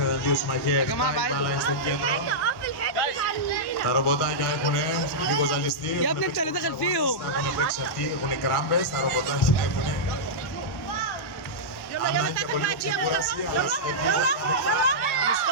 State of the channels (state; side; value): late; right; 1.1 ms